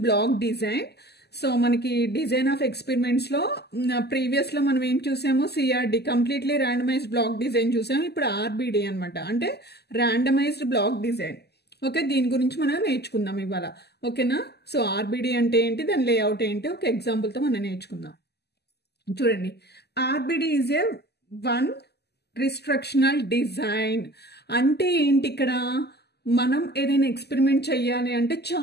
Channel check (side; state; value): right; late; 0.48 ms